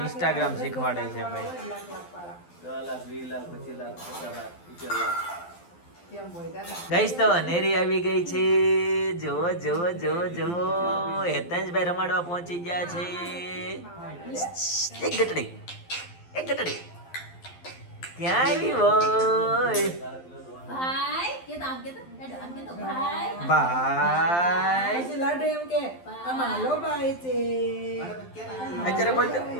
Instagram શીખવાડે છે ભાઈ. 10 લાખ 20 લાખ 25 લાખ 50 લાખ 70 લાખ. કેમ હોય દાદા? ગાઈસ તો અનેરી આવી ગઈ છે. જોવો જોવો જોવો જોવો, હેતંજભાઈ રમાડવા પહોંચી ગયા છે. એક ગટડી ક્યાં આવી હોય ભાઈ કે તો આમ કે તો ભાઈ ભાઈ. પછી લાડુ એમ કે આમાં હાલો ભાઈ છે. અત્યારે બોલતો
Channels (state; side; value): late; right; 12 ms